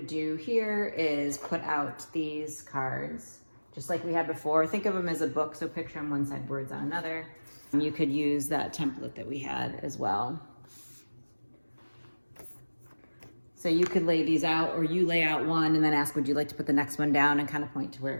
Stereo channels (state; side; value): inverted; both; correlation -1.00